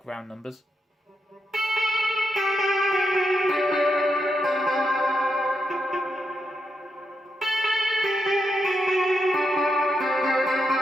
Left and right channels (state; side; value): normal; both; correlation 0.83